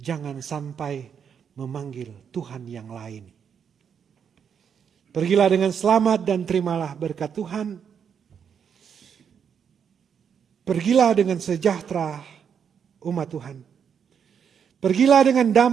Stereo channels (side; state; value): left; quieter; 7.4 dB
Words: sampai memanggil Tuhan yang lain. Pergilah dengan selamat dan terimalah berkat Tuhan. Pergilah dengan sejahtera umat Tuhan. Pergilah dengan